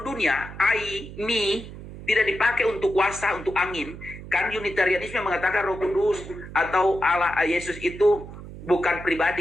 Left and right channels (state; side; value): noise; right; hum, 13 dB below the sound